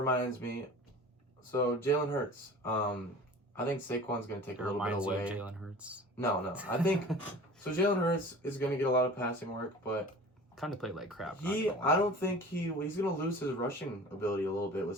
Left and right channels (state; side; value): normal; both; correlation 0.41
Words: me, so Jalen Hurts. I think Saquon's going to take a little bit away. Reminds you of Jalen Hurts? No. I think so. Jalen Hurts is going to get a lot of passing work, but kind of played like crap. I don't think he's going to lose his rushing ability a little bit with